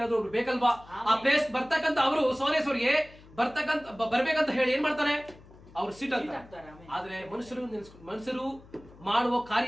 ಒಬ್ರು ಬೇಕಲ್ವಾ, ಆ ಪ್ಲೇಸ್ ಬರ್ತಕ್ಕಂತ ಅವರು ಸೋರೇಶ್ವರಿಗೆ ಬರ್ಬೇಕಂತ ಹೇಳಿ ಏನ್ ಮಾಡ್ತಾನೆ, ಅವ್ರು ಸೀಟ್ ಆಗ್ತಾರೆ. ಆದ್ರೆ ಮನುಷ್ಯರು ಮಾಡುವ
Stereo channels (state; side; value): noise; left; hum, 22 dB below the sound